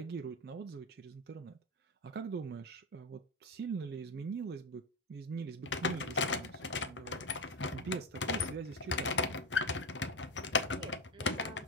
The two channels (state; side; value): normal; both; correlation 0.13